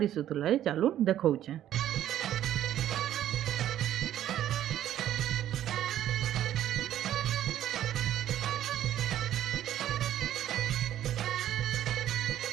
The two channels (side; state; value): left; quieter; 11.9 dB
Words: ए चालू देखौछे।